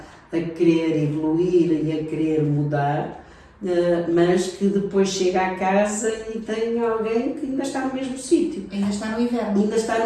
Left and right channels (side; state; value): both; identical; correlation 1.00